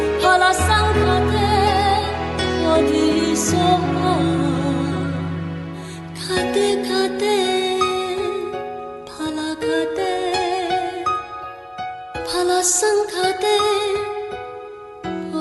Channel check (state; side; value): identical; both; correlation 1.00